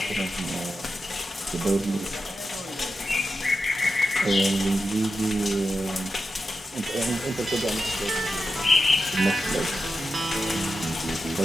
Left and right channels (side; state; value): both; normal; correlation 0.90